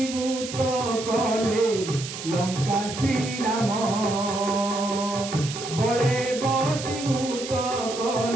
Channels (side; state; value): right; noise; hiss, 9 dB below the sound